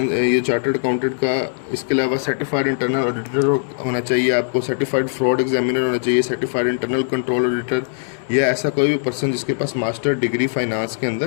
ये चार्टर्ड अकाउंटेंट का। इसके अलावा सर्टिफाइड इंटरनल ऑडिटर होना चाहिए आपको, सर्टिफाइड फ्रॉड एग्जामिनर होना चाहिए, सर्टिफाइड इंटरनल कंट्रोल ऑडिटर, या ऐसा कोई भी पर्सन जिसके पास मास्टर डिग्री फाइनेंस के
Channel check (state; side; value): silent; right; digital silence